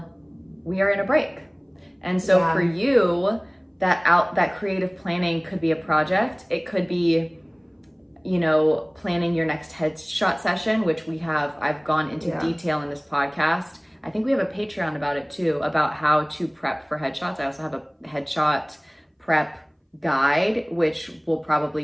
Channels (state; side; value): identical; both; correlation 1.00